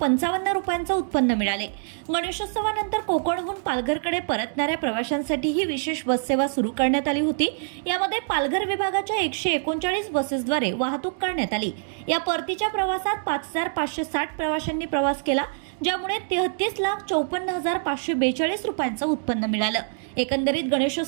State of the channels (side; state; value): left; silent; digital silence